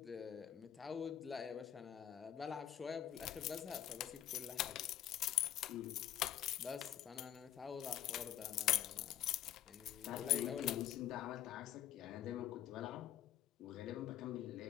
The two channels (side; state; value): right; quieter; 11.1 dB